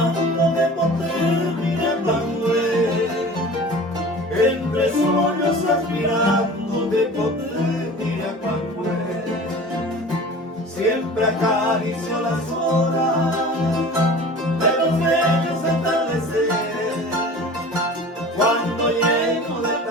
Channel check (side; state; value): both; normal; correlation 0.40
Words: de poder mirando él. Entre sueños aspirando de poder mirar cuando él. Siempre acaricio las horas de los bellos atardeceres, cuando lleno de